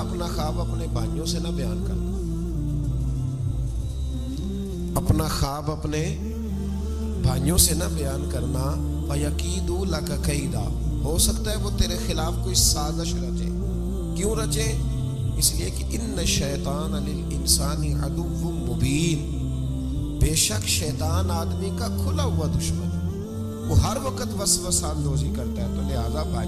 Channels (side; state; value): both; identical; correlation 1.00